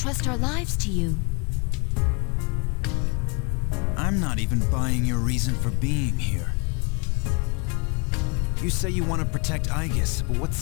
our lives to you. I'm not even buying your reason for being here. You say you want to protect Aegis, but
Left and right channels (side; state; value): right; quieter; 32.5 dB